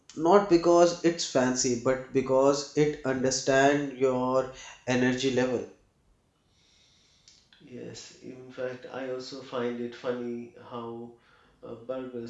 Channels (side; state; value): both; identical; correlation 1.00